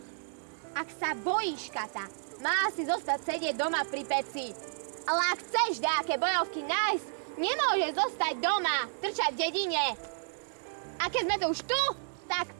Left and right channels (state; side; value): silent; left; 57 dB below the other